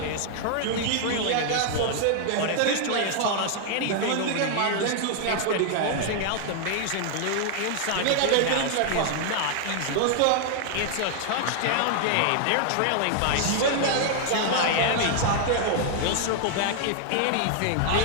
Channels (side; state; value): both; different; correlation 0.00